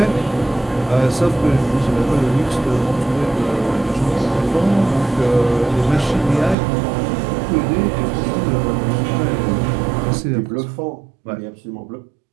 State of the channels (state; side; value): drops out; left; at 6.6 s